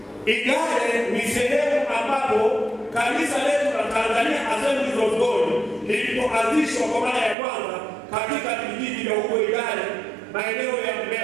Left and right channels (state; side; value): drops out; left; at 7.4 s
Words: Igale ni sehemu ambapo kanisa letu la Tanzania Assemblies of God lilipoanzishwa kwa mara ya kwanza katika vijiji vya huko Igale, maeneo ya